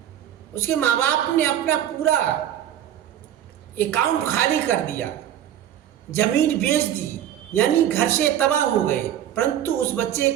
उसके माँ बाप ने अपना पूरा अकाउंट खाली कर दिया, जमीन बेच दी, यानी घर से तबाह हो गए, परंतु उस बच्चे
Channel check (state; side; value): quieter; left; 11.0 dB